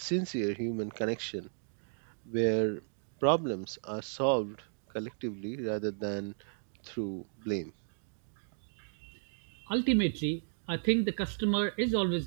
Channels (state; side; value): silent; left; digital silence